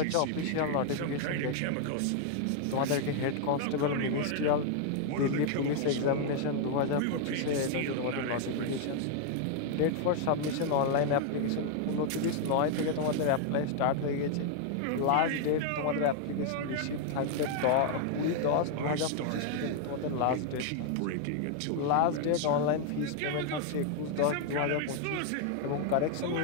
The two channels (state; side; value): different; both; correlation 0.00